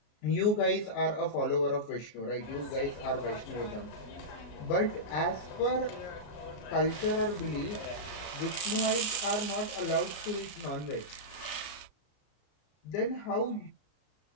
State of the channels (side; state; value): right; late; 33 ms